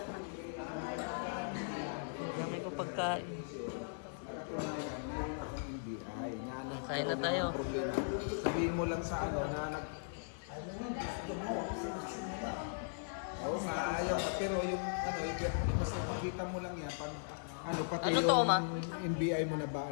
Dami ko pagkain. NBI. Kain na tayo. Sabihin mo lang sa ano na Oo nga, ayaw ka. Pero yung ano, basta makita mo lang yan. Pag, ano, pati Ano yung to, ma? NBI mo na ba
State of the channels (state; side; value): silent; right; digital silence